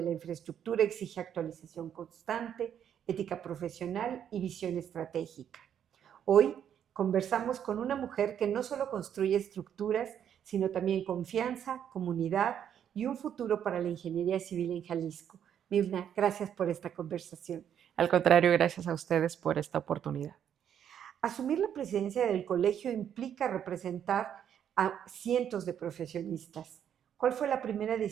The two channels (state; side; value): quieter; left; 9.2 dB